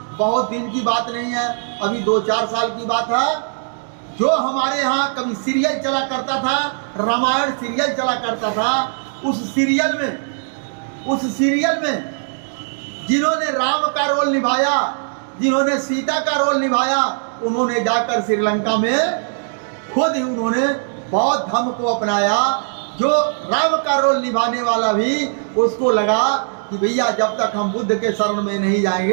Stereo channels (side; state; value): left; silent; digital silence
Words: बहुत दिन की बात नहीं है, अभी 2-4 साल की बात है। जो हमारे यहाँ कभी सीरियल चला करता था, रामायण सीरियल चला करता था, उस सीरियल में जिन्होंने राम का रोल निभाया, जिन्होंने सीता का रोल निभाया, उन्होंने जाकर श्रीलंका में खुद ही उन्होंने बौद्ध धर्म को अपनाया। जो राम का रोल निभाने वाला भी उसको लगा कि भैया जब तक हम बुद्ध के शरण में नहीं